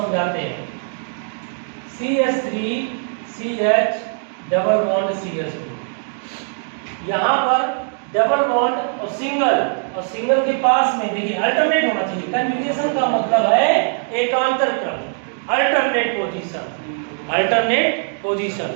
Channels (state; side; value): silent; left; 58 dB below the other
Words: समझाते हैं। CH3 CH double bond CH2। यहाँ पर डबल बॉन्ड और सिंगल के पास में देखिए अल्टरनेट होना चाहिए। कंजुगेशन का मतलब है एकांतर क्रम, alternate position. Alternate position,